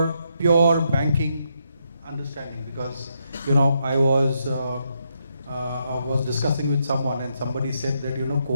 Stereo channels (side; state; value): both; inverted; correlation -0.78